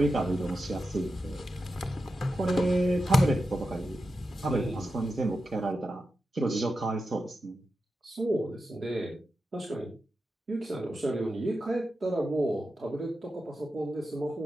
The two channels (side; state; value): both; normal; correlation 0.90